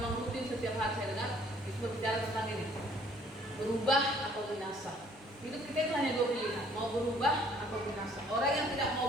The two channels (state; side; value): normal; both; correlation 0.59